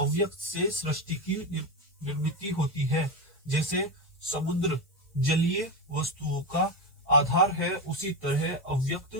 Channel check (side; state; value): both; normal; correlation 0.14